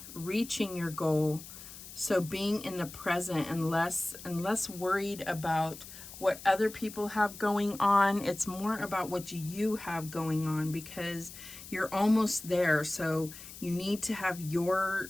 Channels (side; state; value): left; noise; hiss, 14 dB below the sound